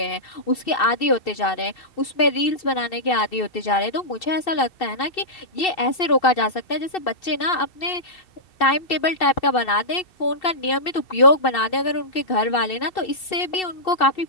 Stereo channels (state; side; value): late; right; 2.7 ms